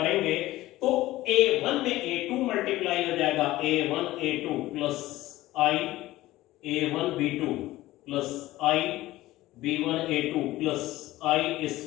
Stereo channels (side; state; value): right; quieter; 16.8 dB